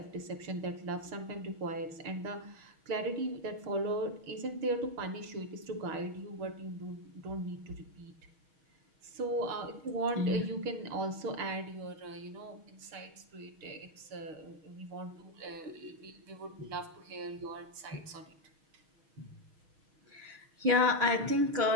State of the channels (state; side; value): late; left; 6.4 ms